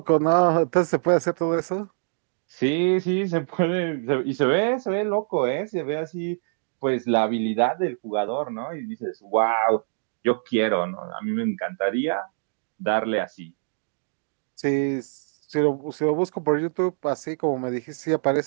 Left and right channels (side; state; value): left; silent; digital silence